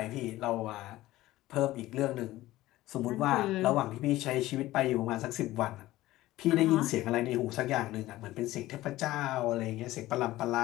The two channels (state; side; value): quieter; right; 16.6 dB